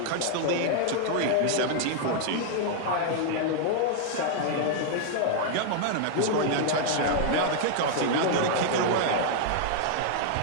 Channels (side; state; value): both; different; correlation 0.00